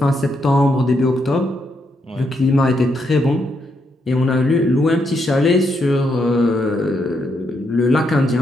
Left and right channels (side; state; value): both; normal; correlation 0.79